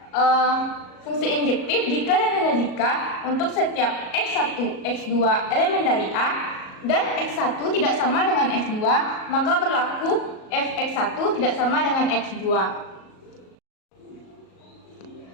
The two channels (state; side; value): late; right; 37 ms